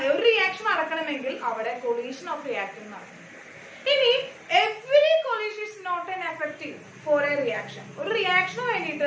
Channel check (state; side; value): identical; both; correlation 1.00